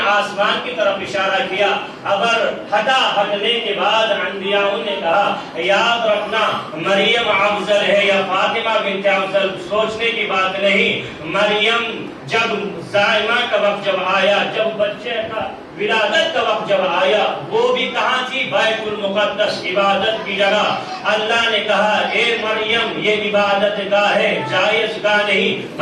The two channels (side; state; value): both; identical; correlation 1.00